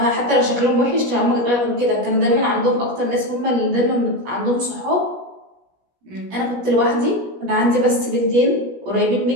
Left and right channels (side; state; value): left; late; 17 ms